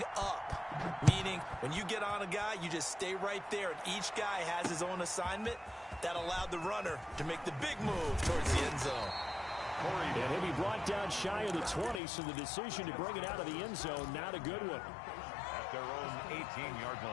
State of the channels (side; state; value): right; drops out; at 12.0 s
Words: up, meaning when you get on a guy, you just stay right there, and each guy has his own assignment. That allowed the runner to make the big move towards the end zone. And he'll be brought down shy of the 20, so the decision to bring it out of the end zone, not a good one. At their own 18-yard